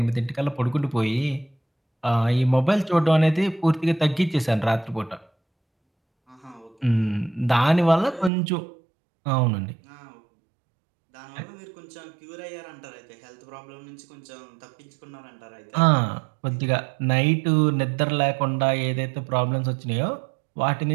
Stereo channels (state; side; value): drops out; left; at 8.3 s